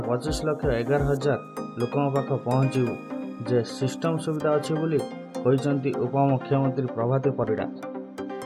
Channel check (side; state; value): both; identical; correlation 1.00